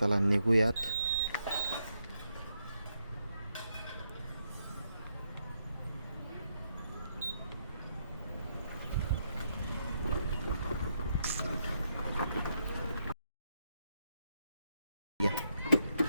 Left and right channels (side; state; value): both; inverted; correlation -0.79